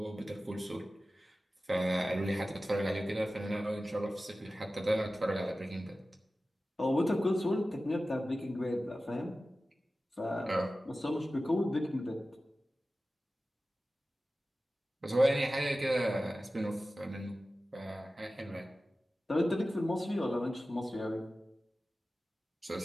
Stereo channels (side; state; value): both; normal; correlation 0.95